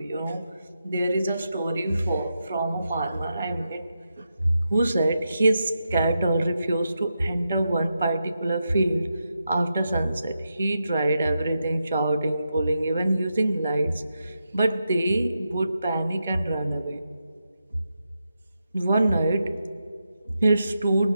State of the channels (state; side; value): inverted; both; correlation -0.86